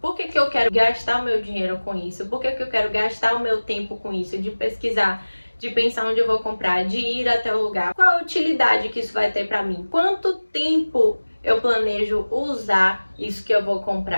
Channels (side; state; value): both; inverted; correlation -1.00